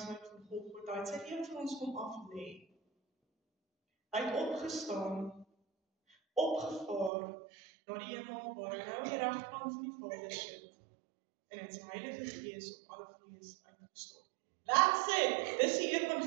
van Golgotha. Hy het sy lewe vir ons kom aflê. Hy het opgestaan, opgevaar na die hemel waar hy nou aan die regterkant van die Vader sit en het sy Heilige Gees op alle vlees uitgestort. That's it! Dis die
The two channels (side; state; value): left; drops out; at 7.1 s